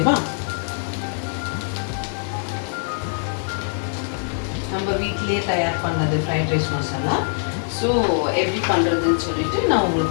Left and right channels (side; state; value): right; silent; 63 dB below the other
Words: நம்ம வீட்டிலேயே தயார் பண்ணது ஃப்ரைட் ரைஸ் மசாலா. ஸோ எப்படி பண்ணுறதுன்னு சொல்லிட்டு நான்